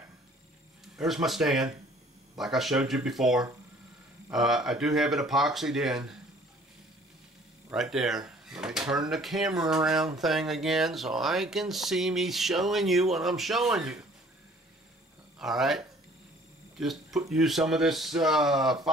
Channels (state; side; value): normal; both; correlation 0.55